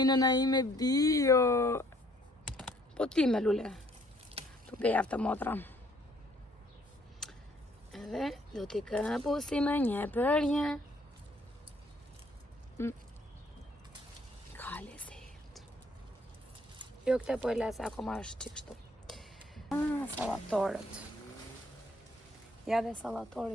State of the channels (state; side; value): normal; both; correlation 0.63